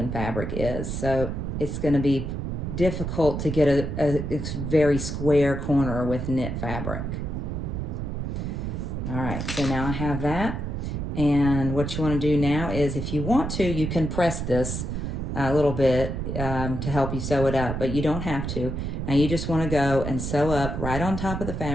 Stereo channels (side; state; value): right; noise; rumble, 3 dB below the sound